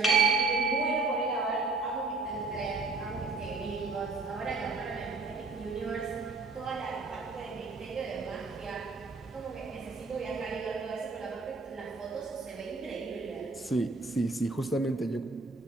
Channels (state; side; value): quieter; left; 3.7 dB